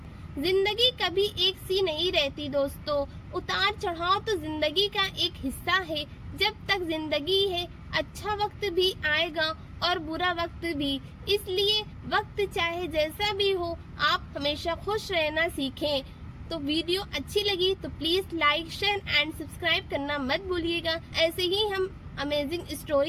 जिंदगी कभी एक सी नहीं रहती दोस्तों। उतार चढ़ाव तो जिंदगी का एक हिस्सा है। जब तक जिंदगी है, अच्छा वक्त भी आएगा और बुरा वक्त भी। इसलिए वक्त चाहे जैसा भी हो, आप हमेशा खुश रहना सीखें। तो वीडियो अच्छी लगी तो please like, share and subscribe करना मत भूलिएगा। ऐसे ही हम अमेजिंग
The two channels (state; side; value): identical; both; correlation 1.00